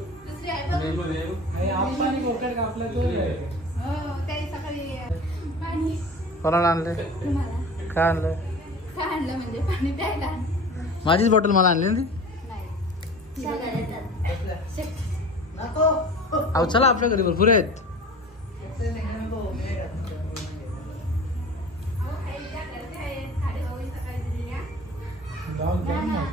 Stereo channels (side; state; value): both; normal; correlation 0.39